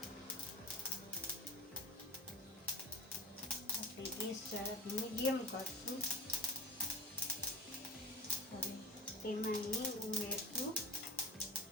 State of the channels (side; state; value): both; normal; correlation 0.31